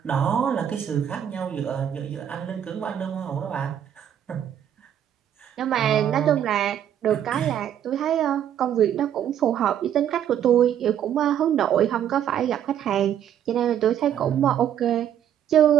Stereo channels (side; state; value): left; quieter; 10.0 dB